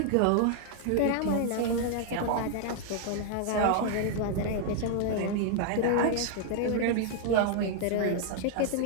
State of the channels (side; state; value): both; different; correlation 0.00